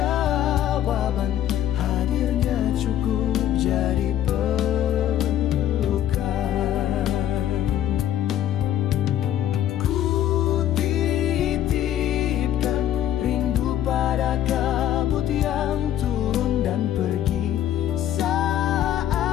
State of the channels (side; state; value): right; quieter; 11.5 dB